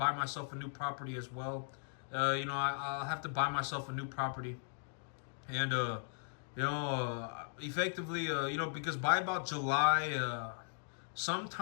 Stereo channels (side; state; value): right; silent; digital silence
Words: myself a new property as well. I'll have to buy myself a new property, and effectively, because by about July,